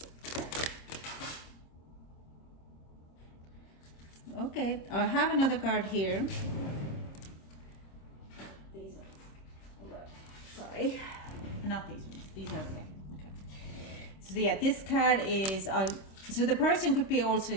Okay, I have another card here. These ones. Sorry, not these ones. These are okay. So yeah, this card is so the person could be also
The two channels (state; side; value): late; right; 26 ms